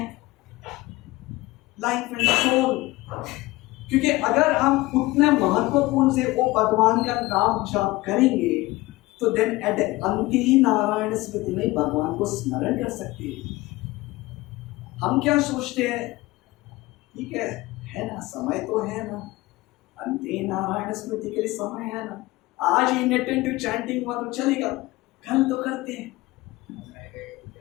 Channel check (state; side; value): quieter; right; 19.9 dB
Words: life and soul. क्योंकि अगर हम उतना महत्वपूर्ण से वो भगवान का नाम जाप करेंगे तो देन एट अंत ही नारायण स्मृति में भगवान को स्मरण कर सकते हैं. हम क्या सोचते हैं, ठीक है ना, समय तो है ना, अंत ही नारायण स्मृति के लिए समय है ना, आज इनअटेंटिव चैंटिंग हुआ तो चलेगा, कल तो करते हैं.